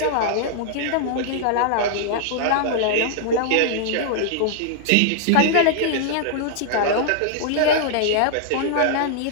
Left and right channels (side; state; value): both; different; correlation 0.00